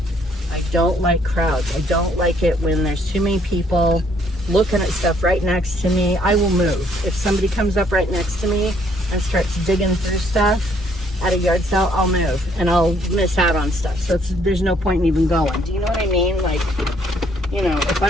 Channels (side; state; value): both; normal; correlation 0.66